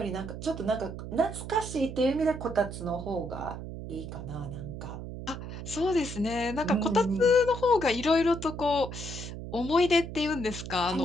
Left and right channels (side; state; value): right; noise; hum, 9 dB below the sound